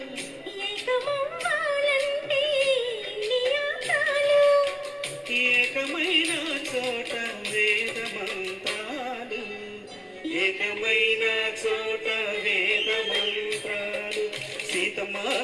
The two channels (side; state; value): both; identical; correlation 1.00